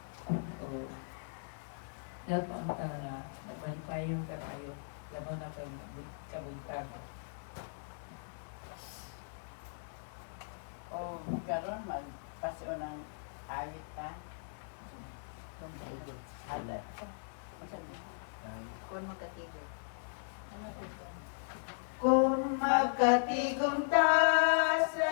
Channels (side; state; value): right; silent; digital silence